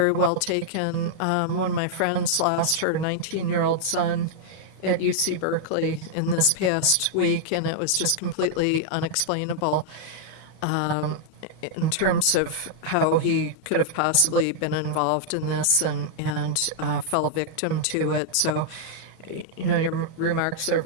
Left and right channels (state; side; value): late; right; 32 ms